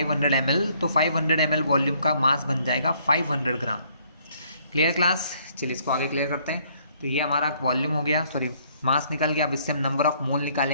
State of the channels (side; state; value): both; inverted; correlation -0.65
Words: ml, तो 500 ml वॉल्यूम का मास बन जाएगा 500 ग्राम। Clear class? चलिए इसको आगे क्लियर करते हैं। तो ये हमारा वॉल्यूम हो गया, सॉरी मास निकल गया। अब इससे हम नंबर ऑफ मोल